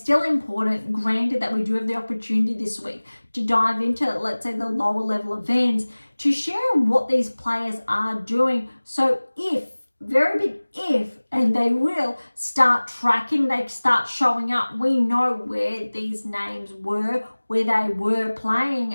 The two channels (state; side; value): inverted; both; correlation -1.00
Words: important, granted that we do have the opportunity this week to dive into, let's say, the lower level events, to share what these players are doing. So if, very big if, and they will start tracking, they start showing up, we know where these names were, where they were playing,